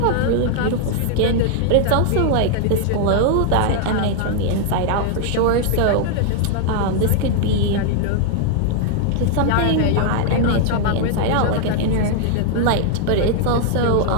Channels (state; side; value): different; both; correlation 0.00